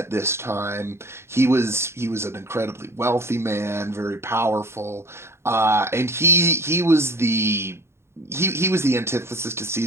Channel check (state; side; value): late; left; 0.12 ms